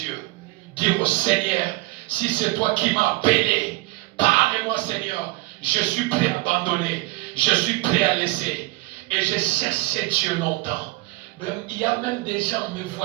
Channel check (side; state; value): left; quieter; 21.7 dB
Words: Dire au Seigneur, si c'est toi qui m'as appelé, parle-moi Seigneur. Je suis prêt à abandonner, je suis prêt à laisser. Et j'ai cherché Dieu longtemps. Il y a même des gens me